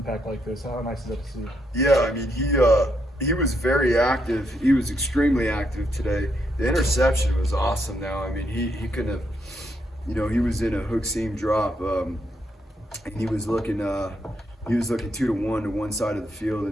like this, how nice is that to see? Yeah, I mean, he was very active. He was extremely active today. The interception was awesome. Now, I mean, he couldn't have. He was in a hook seam drop, and he was looking 2 to 1 to one side of the field,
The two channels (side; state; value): both; normal; correlation 0.78